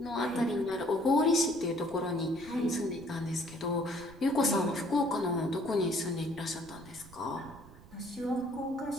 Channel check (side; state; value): right; noise; rumble, 20 dB below the sound